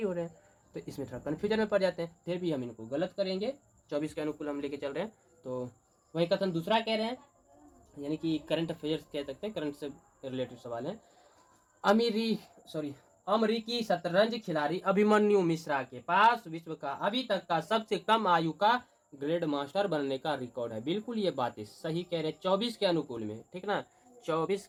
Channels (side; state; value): both; identical; correlation 1.00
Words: हो रहे हैं। तो इसमें थोड़ा कन्फ्यूजन में पड़ जाते हैं, फिर भी हम इनको गलत करेंगे। 24 के अनुकूल हम लेके चल रहे हैं। तो वही कथन दूसरा कह रहे हैं, यानी कि करंट अफेयर्स कह सकते हैं, करंट से रिलेटेड सवाल है। अमेरिकी शतरंज खिलाड़ी अभिमन्यु मिश्रा के पास विश्व का अभी तक का सबसे कम आयु का ग्रैंड मास्टर बनने का रिकॉर्ड है। बिल्कुल ये बातें सही कह रहे हैं 24 के अनुकूल में, ठीक ना, 24